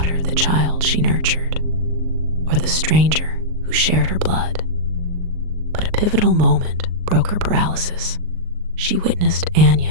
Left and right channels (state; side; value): late; left; 39 ms